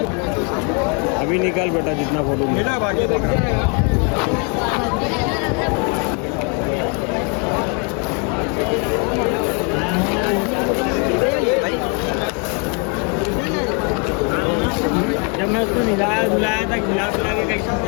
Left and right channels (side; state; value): right; quieter; 36.3 dB